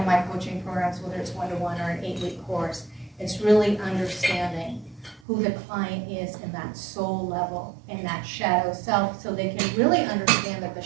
my coaching programs, whether it's one-to-one or an 8-week course, it's really understanding who the client is in that soul level, in that shadow self, so they can really understand that the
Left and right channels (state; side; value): drops out; left; at 5.2 s